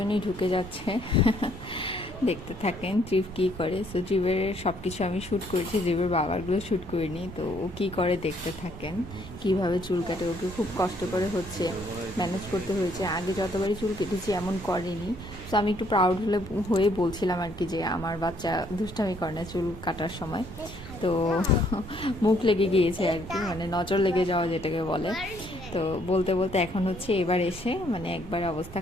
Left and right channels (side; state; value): right; noise; rumble, 15 dB below the sound